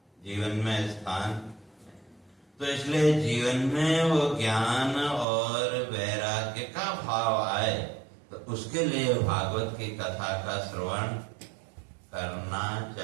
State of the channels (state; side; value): drops out; left; at 5.2 s